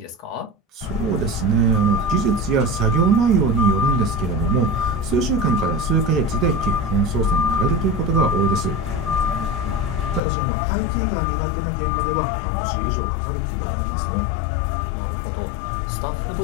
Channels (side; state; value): right; drops out; at 10.2 s